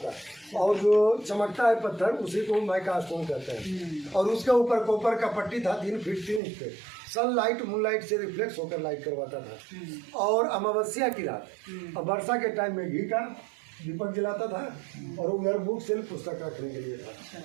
और जो चमकता है पत्थर उसी को माइका स्टोन कहते हैं। और उसके ऊपर कॉपर का पट्टी था 3 फीट 3 इंच पे। सनलाइट मूनलाइट से रिफ्लेक्स होकर लाइट करवाता था। और अमावस्या की रात और वर्षा के टाइम में घी का दीपक जलाता था, और उधर बुक सेल्फ पुस्तक रखने के लिए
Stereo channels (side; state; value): left; drops out; at 6.4 s